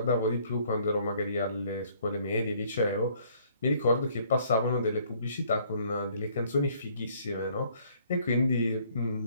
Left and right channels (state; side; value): inverted; both; correlation -0.62